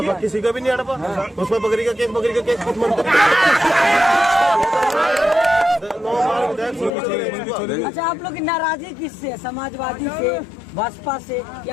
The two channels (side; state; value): right; drops out; at 6.9 s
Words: किसी का भी नहीं हड़पा। उसमें बकरी का केस अच्छा, आप लोग की नाराजगी किससे? समाजवादी से, बसपा से